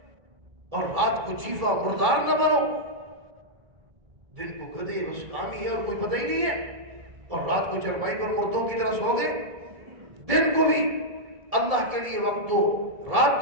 اور رات کو جیفا مردار نہ بنو۔ دن کو گدے بس کام ہی ہے اور کوئی پتہ ہی نہیں ہے، اور رات کو چرپائی پر مردوں کی طرح سو گئے۔ دن کو بھی اللہ کے لیے وقت دو، رات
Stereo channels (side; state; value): left; late; 1.7 ms